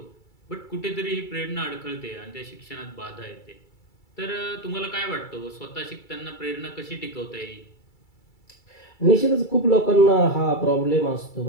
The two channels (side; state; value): right; late; 2.3 ms